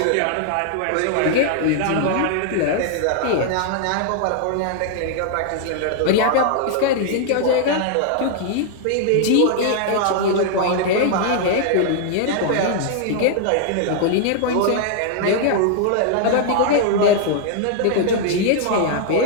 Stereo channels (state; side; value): different; both; correlation 0.00